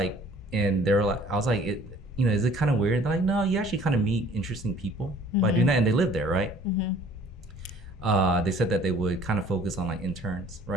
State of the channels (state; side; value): normal; both; correlation 0.53